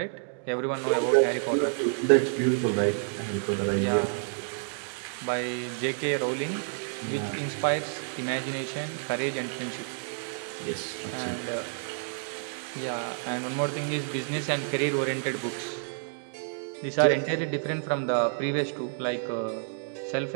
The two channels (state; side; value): silent; left; digital silence